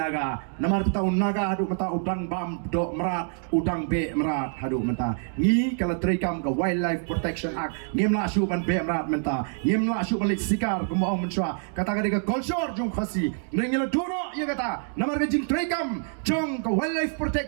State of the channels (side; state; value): left; silent; 57 dB below the other